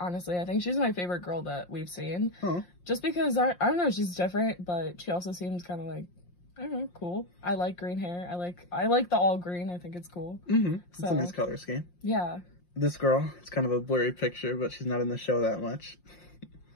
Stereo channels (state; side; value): late; right; 5.7 ms